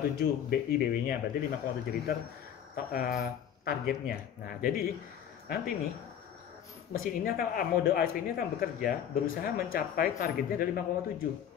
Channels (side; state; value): right; quieter; 9.1 dB